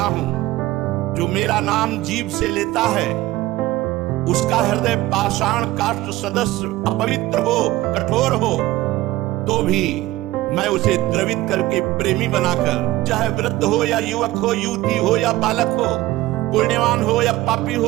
हूं, जो मेरा नाम जीभ से लेता है उसका हृदय पाषाण काष्ठ सदस्य अपवित्र हो, कठोर हो, तो भी मैं उसे द्रवित करके प्रेमी बनाकर, चाहे वृद्ध हो या युवक हो, युवती हो या बालक हो, पुण्यवान हो या पापी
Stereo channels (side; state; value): left; quieter; 17.3 dB